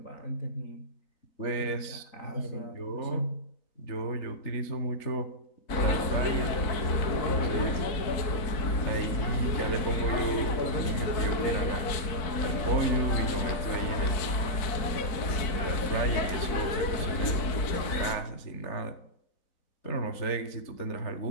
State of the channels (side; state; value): right; late; 4.0 ms